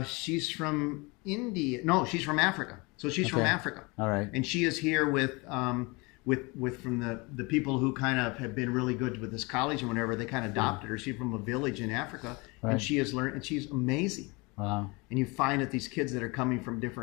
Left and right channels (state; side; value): quieter; right; 27.0 dB